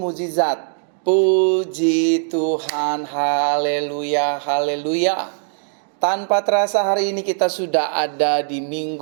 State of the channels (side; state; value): left; silent; digital silence